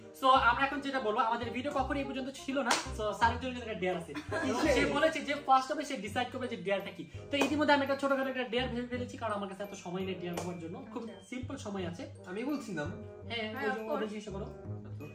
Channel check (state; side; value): identical; both; correlation 1.00